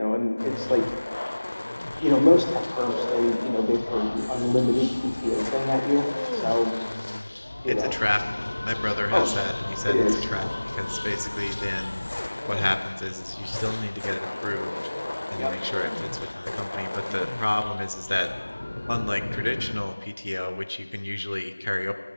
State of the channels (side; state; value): both; inverted; correlation -1.00